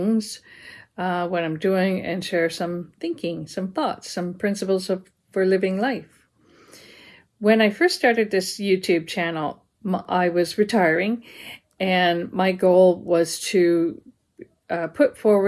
what I'm doing, and share some thinking, some thoughts, some principles for living life. When I first started this YouTube channel, I was retiring, and my goal was to put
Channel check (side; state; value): both; identical; correlation 1.00